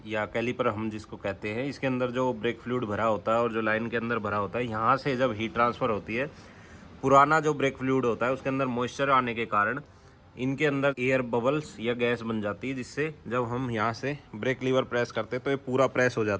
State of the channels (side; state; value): both; identical; correlation 1.00